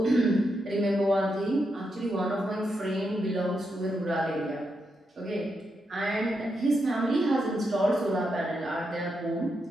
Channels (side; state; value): both; normal; correlation 0.83